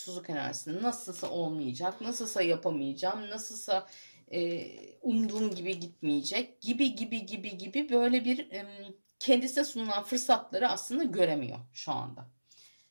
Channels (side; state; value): both; inverted; correlation -1.00